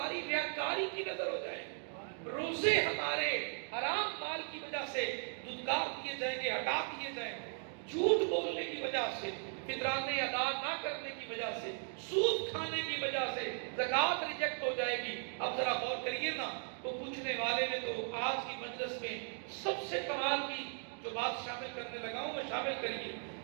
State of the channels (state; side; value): silent; left; 53 dB below the other